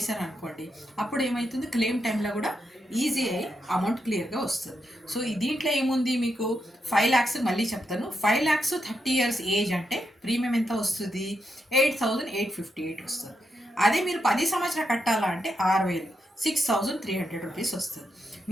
అప్పుడు ఏమవుతుంది, క్లెయిమ్ టైంలో కూడా ఈజీ అయ్యి అమౌంట్ క్లియర్గా వస్తుంది. సో దీంట్లో ఏముంది, మీకు 5 lakhs మళ్ళీ చెప్తాను. 5 lakhs 30 years ఏజ్ అంటే ప్రీమియం ఎంత వస్తుంది, 8,858 వస్తుంది. అదే మీరు 10 సంవత్సరాలు కట్టాలా అంటే 6,000, 6,300 రూపీస్ వస్తుంది.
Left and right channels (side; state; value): both; normal; correlation 0.83